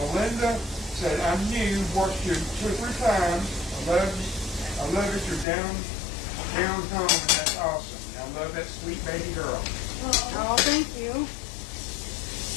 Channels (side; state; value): right; drops out; at 5.5 s